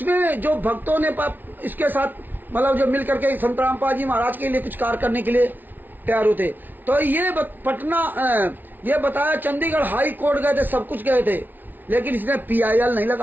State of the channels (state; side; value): late; left; 0.087 ms